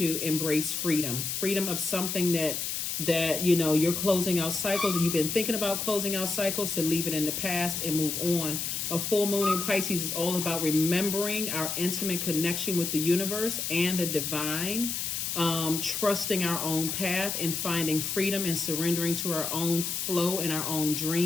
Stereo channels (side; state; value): left; noise; hiss, 2 dB below the sound